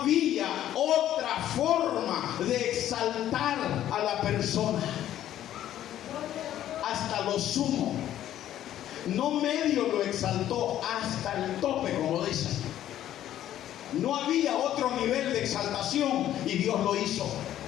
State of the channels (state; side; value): quieter; right; 12.0 dB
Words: otra forma de exaltar a la persona. Hasta lo sumo. No medio lo exaltó, hasta el tope, como dicen. No había otro nivel de exaltación y Dios lo hizo.